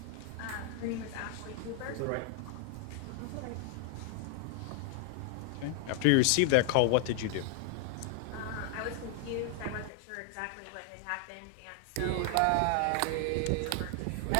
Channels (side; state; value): both; different; correlation 0.00